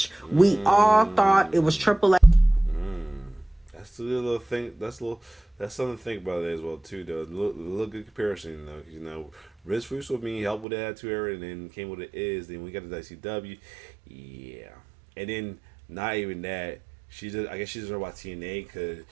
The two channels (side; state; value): left; drops out; at 10.7 s